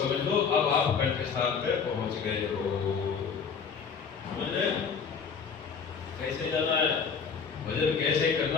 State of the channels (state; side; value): quieter; right; 6.1 dB